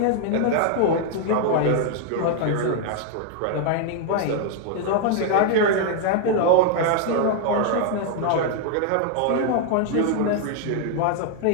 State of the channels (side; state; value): both; different; correlation 0.00